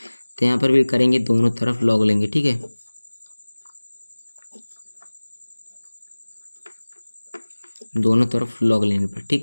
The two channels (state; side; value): inverted; both; correlation -1.00